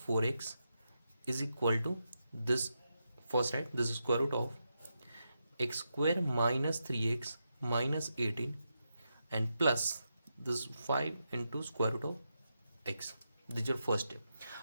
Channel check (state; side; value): inverted; both; correlation -0.86